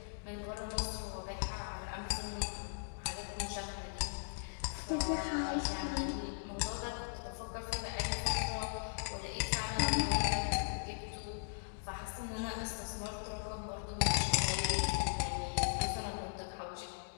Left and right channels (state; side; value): silent; right; digital silence